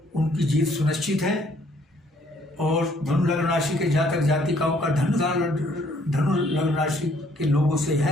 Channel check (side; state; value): both; normal; correlation 0.64